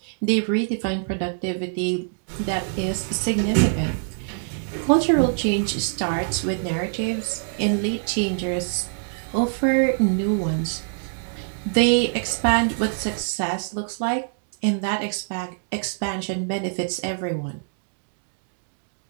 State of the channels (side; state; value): left; silent; digital silence